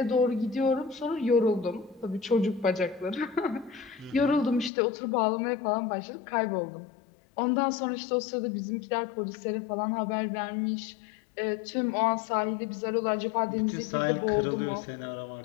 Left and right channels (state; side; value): drops out; right; at 4.7 s